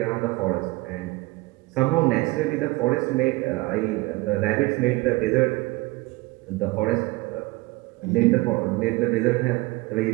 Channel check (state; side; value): quieter; left; 22.1 dB